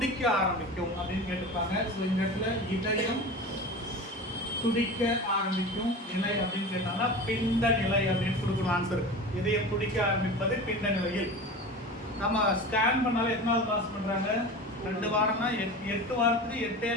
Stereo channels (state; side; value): normal; both; correlation 0.32